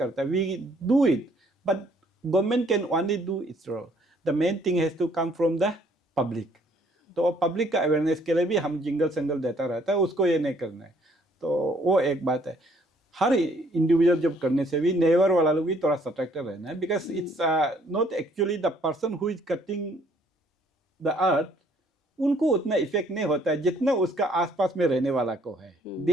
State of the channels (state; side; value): normal; both; correlation 0.63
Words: है. We do it but government can only do its role. The main thing has to come from the public. तो पब्लिक का अवेयरनेस के लिए भी हम जिंगल संगल देता रहता है, उसको ये नहीं करना है. तो वो एक बात है. हर इंडिविजुअल जब करने से भी नेबर वाला लोग भी थोड़ा सतर्क रहना है, because it's not actually the person who is cutting the earth, उनको उतना इफेक्ट नहीं होता है जितना उसका आसपास में रहने वाला को है.